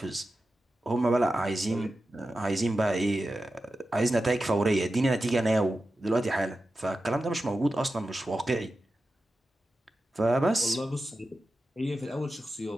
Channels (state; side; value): normal; both; correlation 0.92